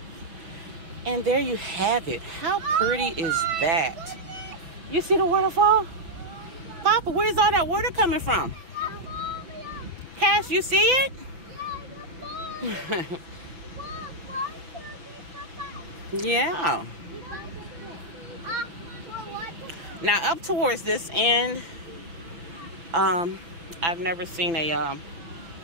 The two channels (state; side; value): late; left; 6.1 ms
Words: And there you have it. How pretty is that? You see the waterfall? Papa, where's all that water coming from? Cass, you see it? Yeah. Now up towards this end, I've never seen